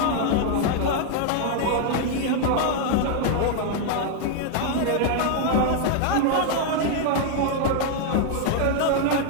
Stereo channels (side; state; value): both; different; correlation 0.00